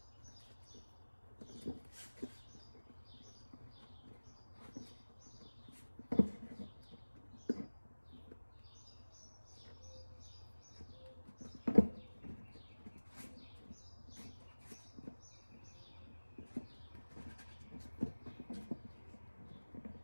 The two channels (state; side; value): inverted; both; correlation -1.00